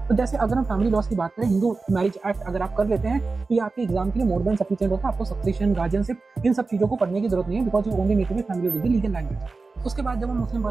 तो जैसे अगर हम फैमिली लॉस की बात करें, हिंदू मैरिज एक्ट अगर आप कर लेते हैं तो ये आपके एग्जाम के लिए मोर देन सफिशिएंट होता है। आपको सक्सेशन, गार्जियनशिप, इन सब चीजों को पढ़ने की जरूरत नहीं है, because you only need to be familiar with the legal language. उसके बाद जब हम मुस्लिम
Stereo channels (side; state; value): left; quieter; 4.0 dB